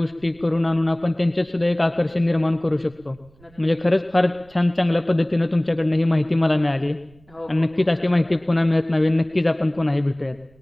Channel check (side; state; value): right; noise; rumble, 28 dB below the sound